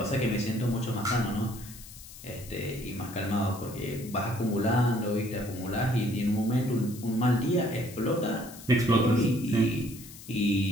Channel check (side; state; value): left; noise; hiss, 16 dB below the sound